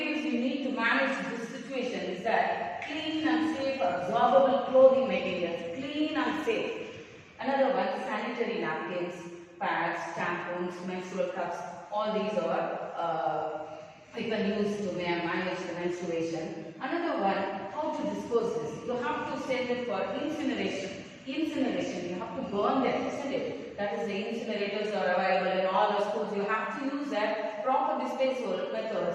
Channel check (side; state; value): both; identical; correlation 1.00